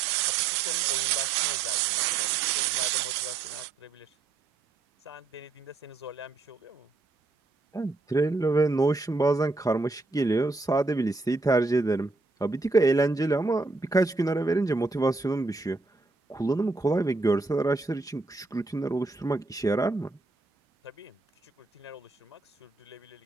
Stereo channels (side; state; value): left; quieter; 3.5 dB